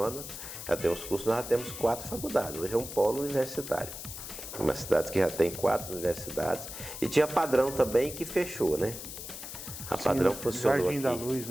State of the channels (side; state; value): left; noise; hiss, 9 dB below the sound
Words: Já tem os cursos, nós já temos 4 faculdades. Hoje é um polo universitário. Uma cidade que já tem 4 universidades. E tinha Padrão também, que fechou, né? A Padrão funcionou Jardim aqui. da Luz,